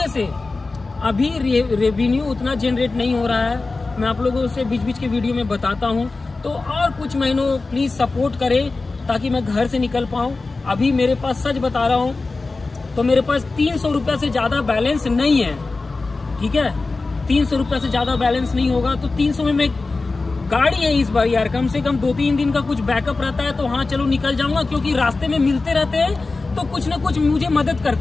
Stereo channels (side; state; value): right; quieter; 3.6 dB